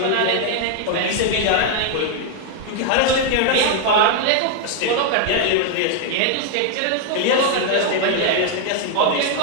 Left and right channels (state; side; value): different; both; correlation 0.00